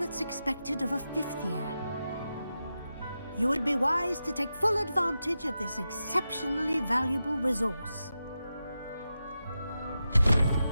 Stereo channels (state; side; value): inverted; both; correlation -0.90